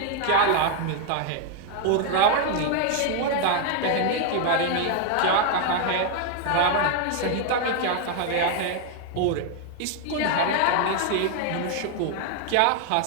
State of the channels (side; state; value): both; different; correlation 0.00